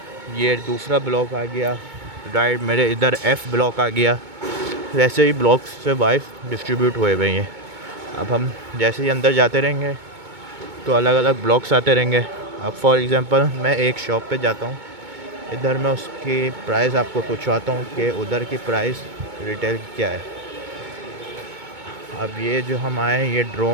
ये दूसरा ब्लॉक आ गया राइट मेरे इधर F ब्लॉक आ गया। वैसे ही ब्लॉक्स से वाइज डिस्ट्रीब्यूट हुए हुए हैं। अब हम जैसे ही अंदर जाते रहेंगे तो अलग अलग ब्लॉक्स आते रहेंगे। अब फॉर एग्ज़ाम्पल मैं एक शॉप पे जाता हूँ, इधर मैं उसकी प्राइस आपको पूछवाता हूँ कि उधर की प्राइस रिटेल क्या है। अब ये जो हम आए ये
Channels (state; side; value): late; left; 2.2 ms